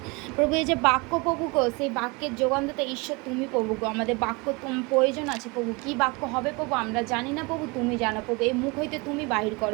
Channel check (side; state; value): left; quieter; 27.7 dB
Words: প্রভু এই যে বাক্য প্রভু গো, সেই বাক্যের যোগানদাতা ঈশ্বর তুমি প্রভু গো। আমাদের বাক্য প্রয়োজন আছে প্রভু, কি বাক্য হবে প্রভু আমরা জানি না প্রভু, তুমি জানো প্রভু। এই মুখ হইতে তুমি বাহির